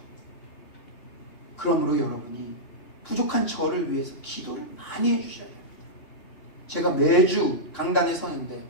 그러므로 여러분이 부족한 저를 위해서 기도를 많이 해주셔야 됩니다. 제가 매주 강단에 서는데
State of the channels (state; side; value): late; right; 2.8 ms